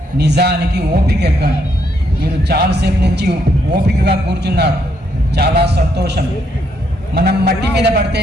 నిజానికి ఓపిక ఎక్కువ అంట. మీరు చాలాసేపు నుంచి ఓపికగా కూర్చున్నారు, చాలా సంతోషం. మనం మట్టి మీద పడితే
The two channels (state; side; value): normal; both; correlation 0.74